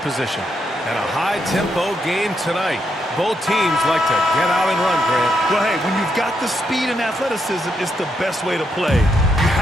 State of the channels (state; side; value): normal; both; correlation 0.80